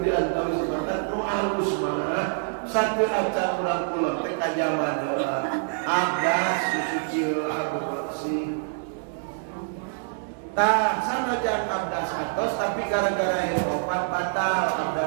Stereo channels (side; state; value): left; silent; 61 dB below the other